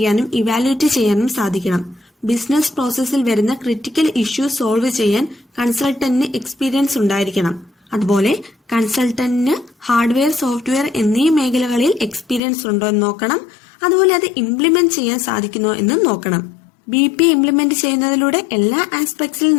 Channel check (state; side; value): drops out; right; at 12.4 s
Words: ഇവാലുവേറ്റ് ചെയ്യാനും സാധിക്കണം. ബിസിനസ് പ്രോസസ്സിൽ വരുന്ന ക്രിട്ടിക്കൽ ഇഷ്യൂ സോൾവ് ചെയ്യാൻ കൺസൾട്ടന്റിന് എക്സ്പീരിയൻസ് ഉണ്ടായിരിക്കണം. അതുപോലെ കൺസൾട്ടന്റിന് ഹാർഡ്വെയർ, സോഫ്റ്റ്വെയർ എന്നീ മേഖലകളിൽ എക്സ്പീരിയൻസ് ഉണ്ടോ എന്ന് നോക്കണം. അതുപോലെ അത് ഇംപ്ലിമെന്റ് ചെയ്യാൻ സാധിക്കുമോ എന്നും നോക്കണം. BPA ഇംപ്ലിമെന്റ് ചെയ്യുന്നതിലൂടെ എല്ലാ ആസ്പെക്ട്സിൽ